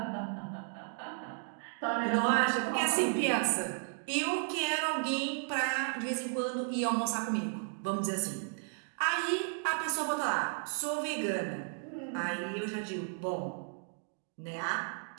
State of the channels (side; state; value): left; silent; 55 dB below the other